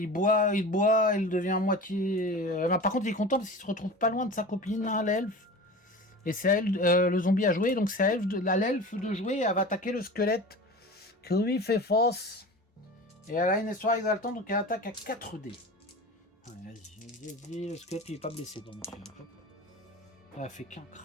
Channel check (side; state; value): both; normal; correlation 0.34